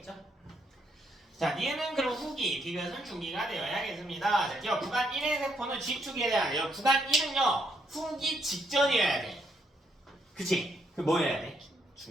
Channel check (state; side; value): normal; both; correlation 0.74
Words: 자, 얘는 그럼 후기, 디귿은 중기가 되어야겠습니다. 자, 기억 구간 1의 세포는 G축에 대한 구간 1은요, 후기 직전이어야 돼. 그치? 그 뭐 해야 돼?